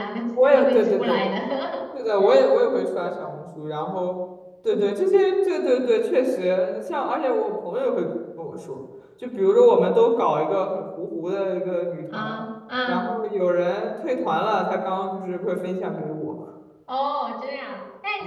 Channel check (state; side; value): identical; both; correlation 1.00